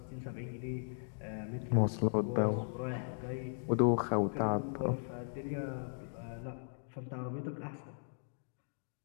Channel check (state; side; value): silent; right; digital silence